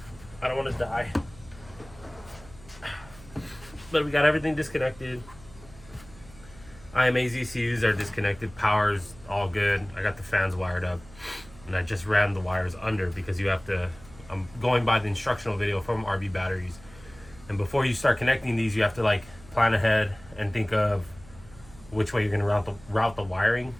I don't want to die. But we got everything disconnected. IMA's ECUs are disconnected. Power's all good. I got the fans wired up. And I just ran the wires under because you have to. I'm going by the instructional video from RBbatteries. And before you start connecting these, you have to like plan ahead and think of which way you're going to route the wiring.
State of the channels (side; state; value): right; noise; hum, 21 dB below the sound